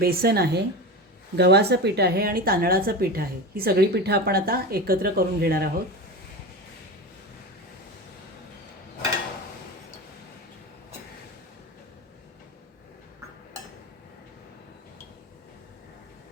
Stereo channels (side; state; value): both; normal; correlation 0.25